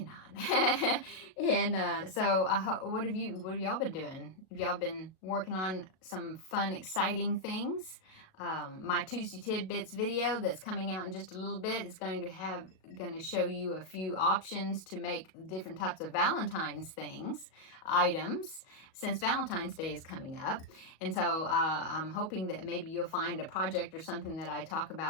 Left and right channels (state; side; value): late; right; 37 ms